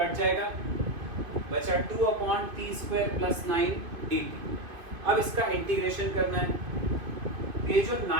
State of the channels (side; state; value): left; late; 2.5 ms